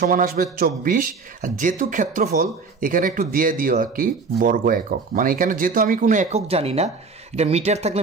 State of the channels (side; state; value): left; quieter; 4.6 dB